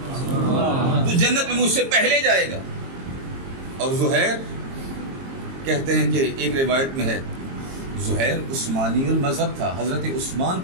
تو جنت میں مجھ سے پہلے جائے گا۔ اور زہیر کہتے ہیں کہ ایک روایت میں ہے زہیر عثمانی المذہب تھا، حضرت عثمان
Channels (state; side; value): late; left; 22 ms